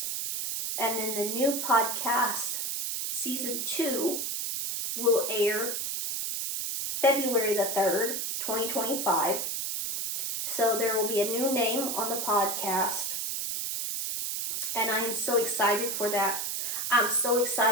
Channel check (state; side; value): noise; right; hiss, 2 dB below the sound